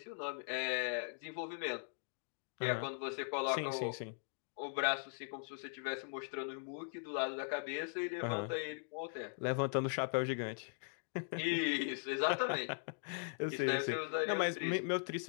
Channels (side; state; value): right; silent; digital silence